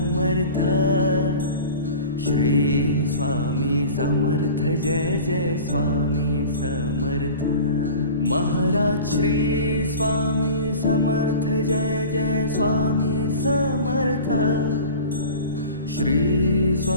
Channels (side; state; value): both; inverted; correlation -0.38